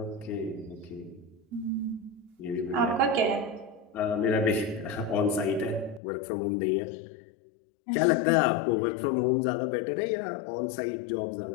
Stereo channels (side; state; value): right; drops out; at 6.0 s